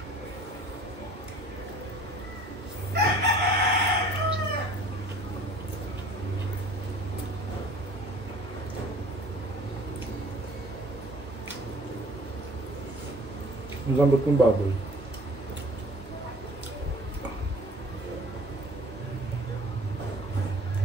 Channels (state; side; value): normal; both; correlation 0.49